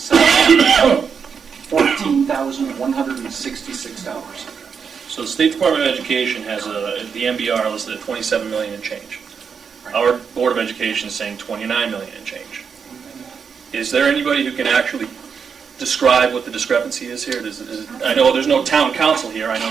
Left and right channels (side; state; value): left; quieter; 6.4 dB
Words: So the State Department of Education has the MBR listed at 27 million and change. Our Board of Education is saying 29 million and change. Is there anybody who can actually describe what the discrepancy is here? I know there's no town council here. I know